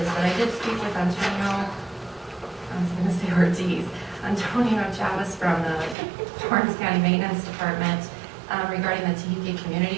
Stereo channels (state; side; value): drops out; left; at 6.0 s